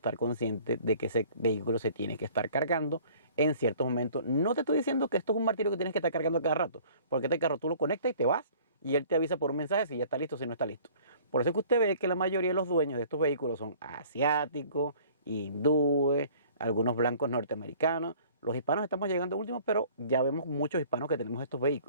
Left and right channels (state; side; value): inverted; both; correlation -0.52